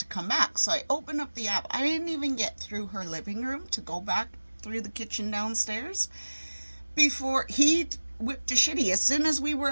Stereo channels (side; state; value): both; inverted; correlation -1.00